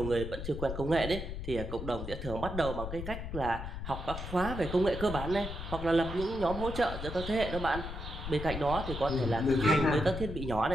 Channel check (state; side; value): noise; left; rumble, 7 dB below the sound